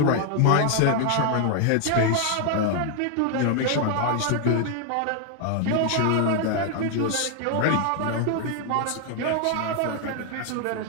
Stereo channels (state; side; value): different; both; correlation 0.00